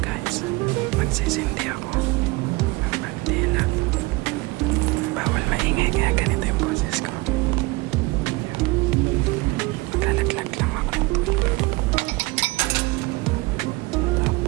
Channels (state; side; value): quieter; left; 23.3 dB